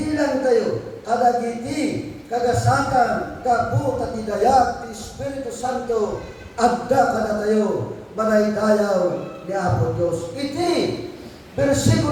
tayo, kadagiti, kagasakan, gabu, tatidayag, ti Espiritu Santo, adda kada tayo, manaydayaw ni Apo Diyos. Iti,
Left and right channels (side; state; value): both; identical; correlation 1.00